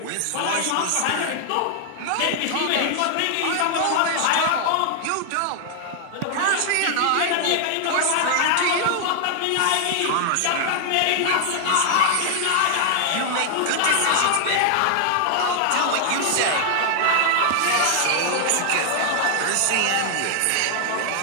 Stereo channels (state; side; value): different; both; correlation 0.00